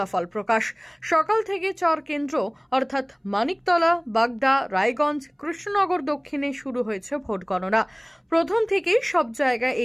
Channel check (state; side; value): identical; both; correlation 1.00